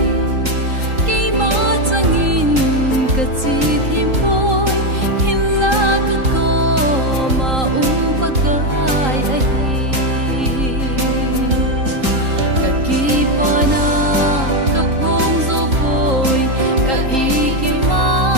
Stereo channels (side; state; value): left; late; 3.8 ms